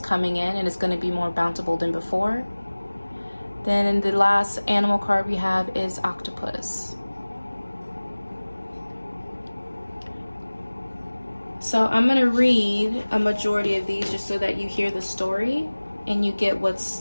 in, and it's going to be more bountiful than before. Then the last animal card we have is Octopus. So I'm going to read a majority of these just so that you hear the story and you get what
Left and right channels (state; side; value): inverted; both; correlation -1.00